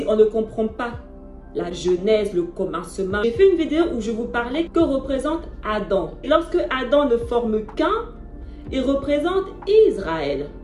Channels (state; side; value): identical; both; correlation 1.00